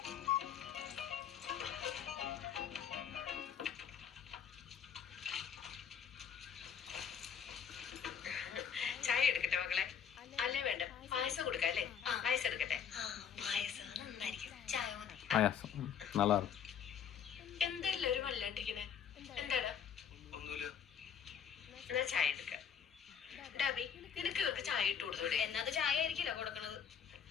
ചായ എടുക്കട്ടെ മക്കളെ? അല്ലേ വേണ്ട, പായസം കൊടുക്കാം അല്ലേ? പായസം എടുക്കട്ടെ. പായസം നന്നായിരിക്കും. ചായ മതി. പായസം நல்லா இருக்கும். എന്താ എല്ലാരും വല്ലാണ്ടിരിക്കണേ? എന്താടാ? ഒന്നുമില്ല. എന്നാ ചായ എടുക്കാം. ഡാബി, നിനക്ക് ഇവർക്ക് ചായ ഇട്ട് കൊടുത്തൂടെ? എന്നത് ചായ ആയിരിക്കില്ല കൊടുക്കണത്.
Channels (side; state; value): right; quieter; 7.9 dB